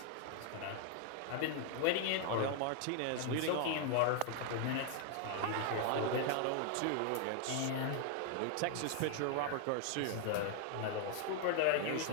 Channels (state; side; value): different; both; correlation 0.00